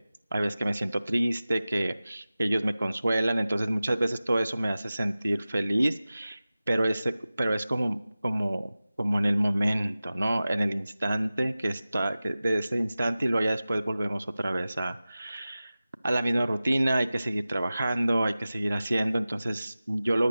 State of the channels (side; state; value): both; inverted; correlation -0.96